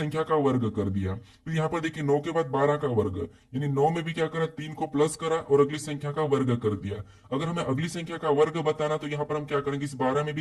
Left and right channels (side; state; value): both; identical; correlation 1.00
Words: का वर्ग कर दिया। फिर यहाँ पर देखिए 9 के बाद 12 का वर्ग, यानी 9 में भी क्या करा, 3 को प्लस करा और अगली संख्या का वर्ग कर दिया। अगर हमें अगली संख्या का वर्ग बताना तो यहाँ पर हम क्या करेंगे, इस 12 में